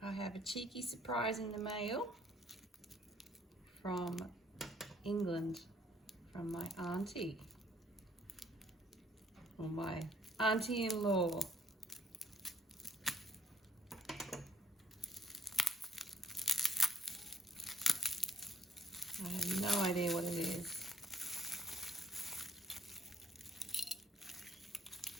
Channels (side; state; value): both; normal; correlation 0.63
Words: I have a cheeky surprise in the mail from England, from my auntie, or my auntie-in-law. I have no idea what it is.